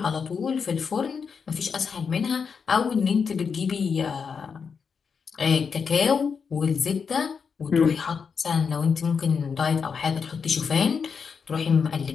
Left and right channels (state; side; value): quieter; right; 6.0 dB